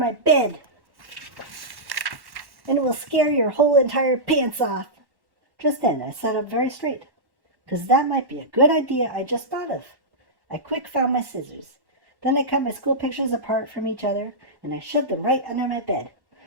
bed. And it will scare your whole entire pants off. Just then, I sat up very straight, 'cause that might be a good idea I just thought of. I quick found my scissors. Then I cut my school pictures apart from each other, and I shoved them right under my bed.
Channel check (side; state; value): left; late; 1.1 ms